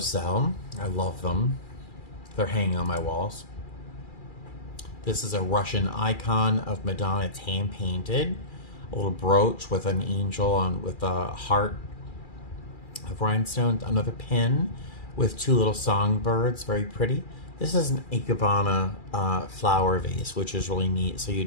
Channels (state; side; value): late; right; 2.4 ms